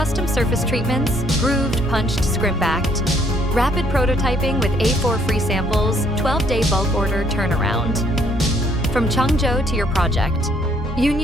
surface treatments, grooved, punched, scrimp-backed, rapid prototyping with A4 free samples, 12-day bulk order turnaround. From Changzhou to your project,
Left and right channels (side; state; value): both; normal; correlation 0.66